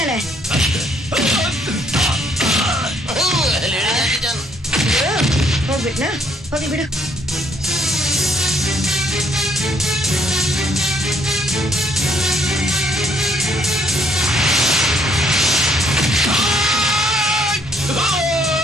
ಹೋಗ್ಬಿಟ್ನಾ? ಹೋಗಿ ಬಿಡು.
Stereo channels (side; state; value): both; normal; correlation 0.67